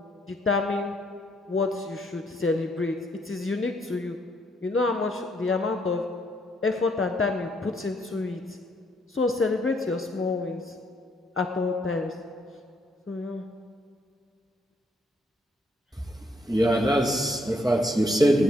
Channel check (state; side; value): normal; both; correlation 0.71